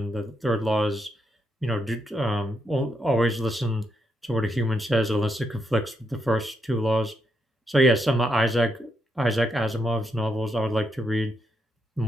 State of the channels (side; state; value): both; normal; correlation 0.80